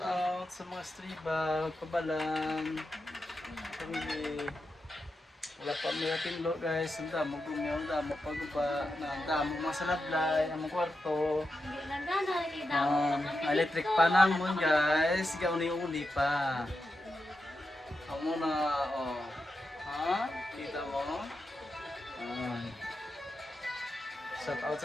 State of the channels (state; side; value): normal; both; correlation 0.88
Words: out sa mga striba, pabalan, pamilya. Wala pa may ating lo guys, ang damo gumiyaw, ang damo paguba, ang damo mga salablay, ang mga kwarto. Electric pa naman guys, gauni-uni pa. Ako muna, oh. Ha? Kita mo? Shout out